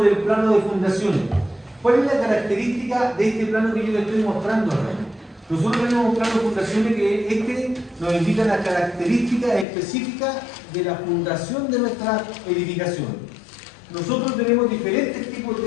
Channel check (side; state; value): right; drops out; at 9.7 s